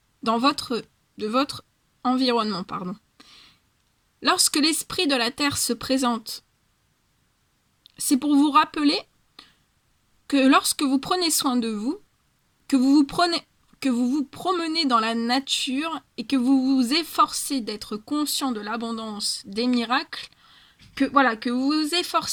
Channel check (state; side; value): identical; both; correlation 1.00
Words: environnement. Lorsque l'esprit de la terre se présente, c'est pour vous rappeler que lorsque vous prenez soin de vous, que vous vous promenez dans la nature et que vous vous efforcez d'être conscient de l'abondance des miracles, que vous vous